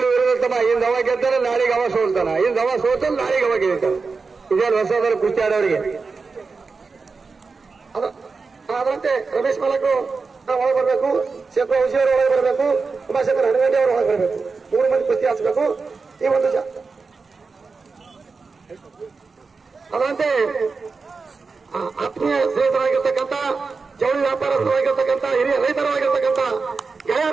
ಇರುತ್ತಮ್ಮ. ಇಂದ ಅವ ಗೆದ್ದರೆ ನಾಳೆಗೆ ಅವ ಸೋಲ್ತಾನ, ಇಂದ ಅವ ಸೋತಲ್ಲಿ ನಾಳೆಗೆ ಅವ ಗೆಲ್ತಾನ. ಇದೇನು ಹೊಸದನ್ನು ಕುಸ್ತಿ ಆಡೋರಿಗೆ. ಅದರಂತೆ ರಮೇಶ್ ಮಾಲಕರು ಒಳಗೆ ಬರಬೇಕು, ಶೇಖರ್ ಔಷಧಿ ಅವರು ಒಳಗೆ ಬರಬೇಕು, ಉಮಾಶಂಕರ್ ಹನಗಂಡಿ ಅವರು ಒಳಗೆ ಬರಬೇಕು. 3 ಮಂದಿ ಕುಸ್ತಿ ಹಾಕ್ಬೇಕು. ಈ ಒಂದು ಅದರಂತೆ ಆತ್ಮೀಯ ಸ್ನೇಹಿತರಾಗಿರ್ತಕ್ಕಂಥ, ಜವಳಿ ವ್ಯಾಪಾರಸ್ಥರಾಗಿರ್ತಕ್ಕಂಥ, ಹಿರಿಯ ರೈತರಾಗಿರ್ತಕ್ಕಂಥ,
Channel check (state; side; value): quieter; left; 4.5 dB